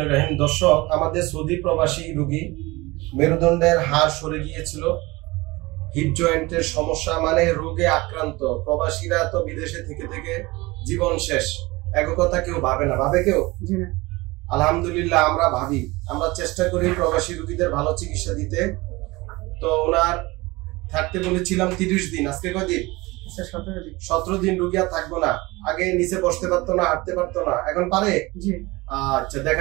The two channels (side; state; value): left; quieter; 22.1 dB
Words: রহিম। দর্শক, আমাদের সৌদি প্রবাসী রোগী মেরুদণ্ডের হাড় সরে গিয়েছিল, হিপ জয়েন্টের সমস্যা, মানে রোগে আক্রান্ত। প্রবাসীরা তো বিদেশে থেকে থেকে জীবন শেষ, এক কথা কেউ ভাবে না, ভাবে কেউ? আলহামদুলিল্লাহ আমরা ভাবি, আমরা চেষ্টা করি প্রবাসী রোগীদের ভালো চিকিৎসা দিতে। তো ওনার থাকতে বলেছিলাম 30 দিন, আজকে কয়দিন? 17 দিন। রোগী আর থাকবো না। আগে নিচে বসতে পারতো না, হাঁটতে পারতো না, এখন পারে? আচ্ছা